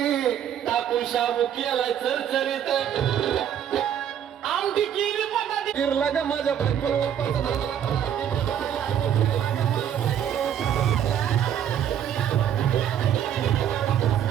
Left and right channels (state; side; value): quieter; left; 9.5 dB